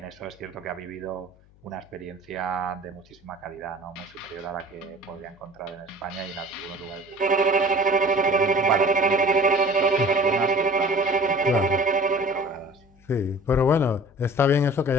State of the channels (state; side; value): noise; left; hum, 28 dB below the sound